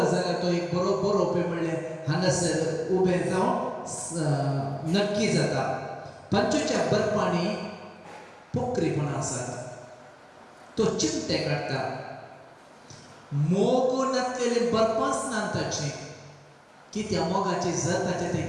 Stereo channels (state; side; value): identical; both; correlation 1.00